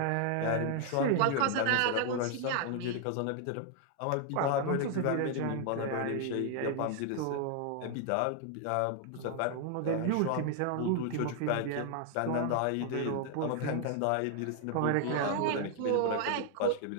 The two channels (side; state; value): both; different; correlation 0.00